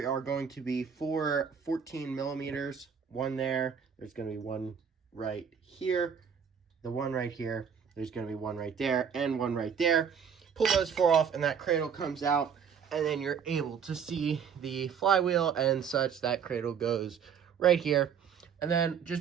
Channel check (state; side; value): quieter; left; 7.2 dB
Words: are going to be 4 14 millimeters, one there. There's going to be one right here, the one right here. There's going to be one right there, and one right there. Pull those 4 off, and that cradle comes out, and then you're able to see the flywheel and such. That cradle goes right here. And then